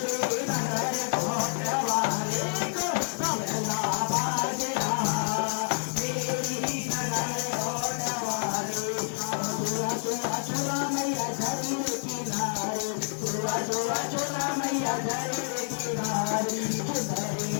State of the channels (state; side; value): silent; right; 59 dB below the other